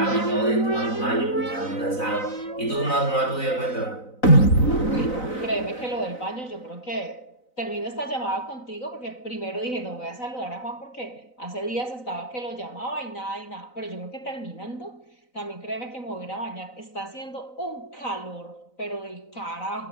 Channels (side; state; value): right; late; 4.0 ms